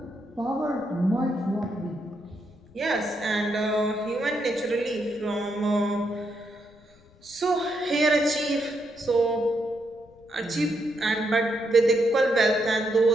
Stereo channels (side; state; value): left; noise; rumble, 28 dB below the sound